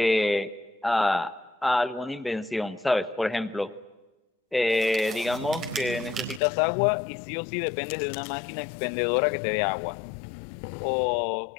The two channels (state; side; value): drops out; right; at 6.4 s